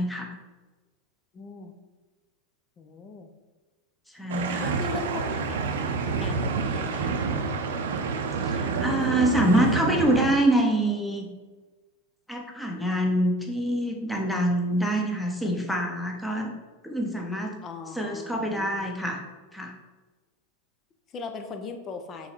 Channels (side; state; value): both; normal; correlation 0.41